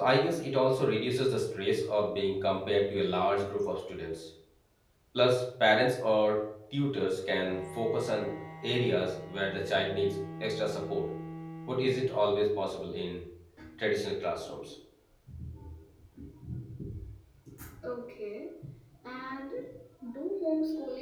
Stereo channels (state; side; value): identical; both; correlation 1.00